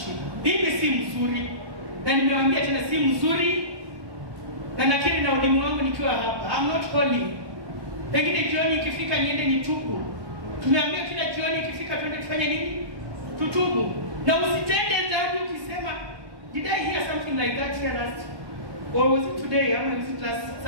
Hii si mzuri. Na nimewaambia tena si mzuri. Na nakiri na ulimu wangu nikiwa hapa. I'm not holy. Lakini jioni ikifika niende nitubu. Tumeambia kila jioni ikifika twende tufanye nini? Tutubu. Na usitende dhambi ukisema, did I hear something like that here last? Or was it today? Or was it last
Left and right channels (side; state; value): left; late; 1.2 ms